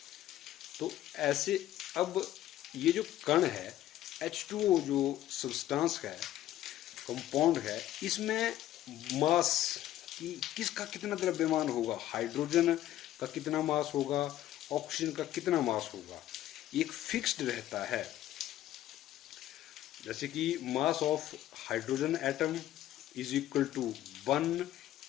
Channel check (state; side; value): quieter; right; 13.3 dB